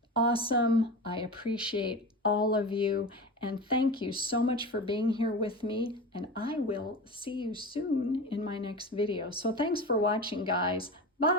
awesome. I appreciate all of you. And thank you so much for being here with me. And I will see you soon in my next video. So thanks for watching, guys.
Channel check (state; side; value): normal; both; correlation 0.28